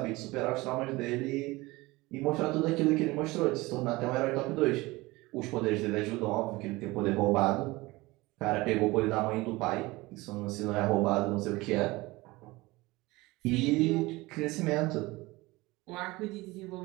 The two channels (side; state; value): left; quieter; 21.3 dB